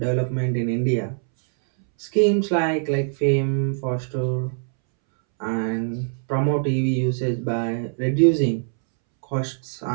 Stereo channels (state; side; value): silent; left; 63 dB below the other